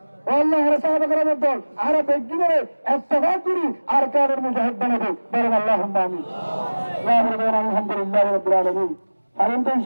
ও আল্লাহ আর সাহাবাগণের দল আর বেগিনের ইত্তেফাক করি আর কাদের মুজাহিদ বানাবো বলেন আল্লাহুম্মা আমিন আলহামদুলিল্লাহ রাব্বিল আলামিন পারেন তো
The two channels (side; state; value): both; inverted; correlation -1.00